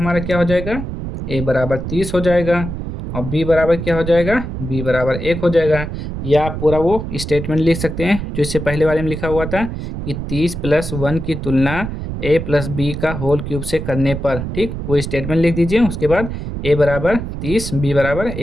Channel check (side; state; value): right; noise; rumble, 6 dB below the sound